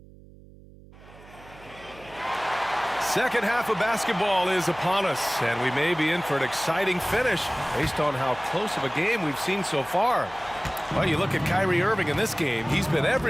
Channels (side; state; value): right; noise; hum, 22 dB below the sound